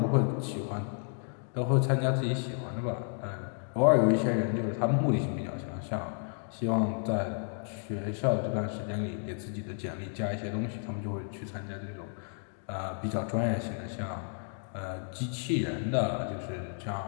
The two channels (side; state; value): right; silent; 56 dB below the other